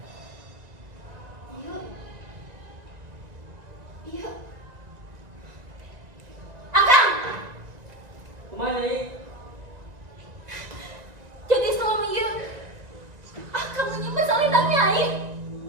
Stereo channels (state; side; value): late; left; 1.9 ms